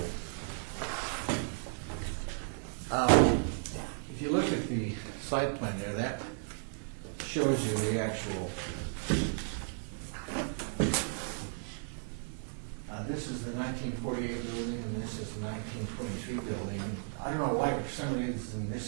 If you look at the site plan there, that shows you the actual. This is the 1948 building, and this is the 1923 building. I don't know why, for some reason,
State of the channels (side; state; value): left; silent; 55 dB below the other